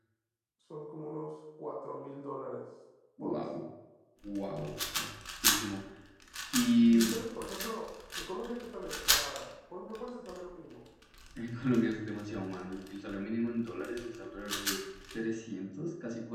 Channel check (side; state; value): both; identical; correlation 1.00